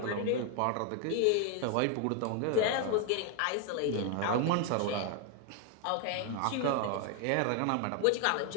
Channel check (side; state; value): both; different; correlation 0.00